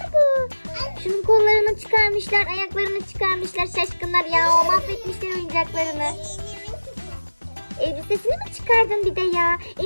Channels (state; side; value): inverted; both; correlation -1.00